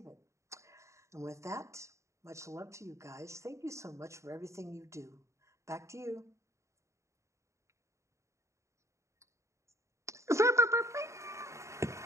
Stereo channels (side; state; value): left; late; 0.14 ms